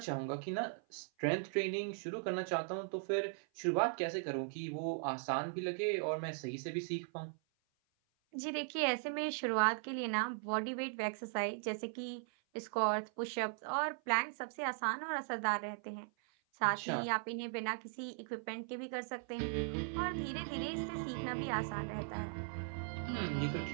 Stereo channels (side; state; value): left; silent; 52 dB below the other